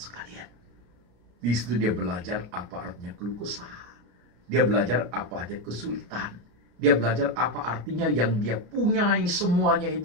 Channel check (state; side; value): late; left; 34 ms